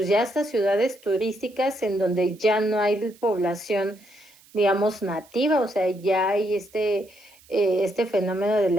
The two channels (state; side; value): noise; right; hiss, 27 dB below the sound